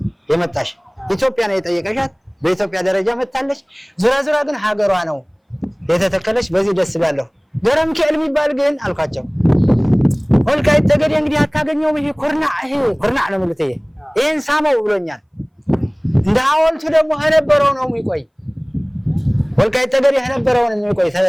የመጣሽ፣ ኢትዮጵያ ነው የጠየቀሻት፣ በኢትዮጵያ ደረጃ መጣለች። ዙራ ግን ሀገሯ ነው የተተከለች። በዚህ ደስ ይላለሁ። ገረም ከል የሚባል ግን አልኳቸው ወልቃይት ጠገዴ እንግዲህ አታገኘውም። ይሄ ኩርናዕ ነው ማለት ይሄን ሳመው ብሎኛል። እንደ ሐውልቱ ደግሞ ነበረው ነው የሚቆይ ወልቃይት ጠገዴ ነበረው ነው የሚቆይ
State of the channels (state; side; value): identical; both; correlation 1.00